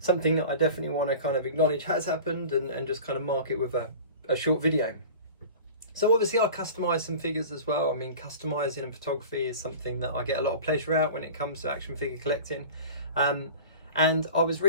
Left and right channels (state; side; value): inverted; both; correlation -0.38